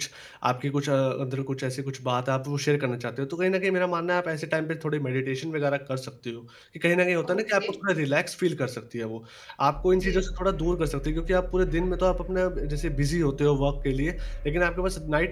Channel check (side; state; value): both; identical; correlation 1.00